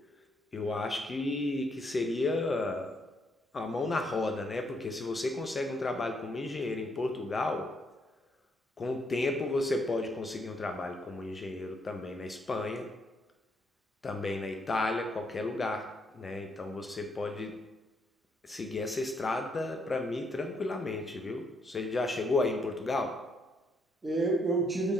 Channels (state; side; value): normal; both; correlation 0.73